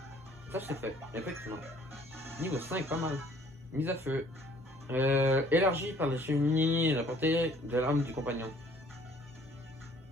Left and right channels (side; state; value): both; normal; correlation 0.58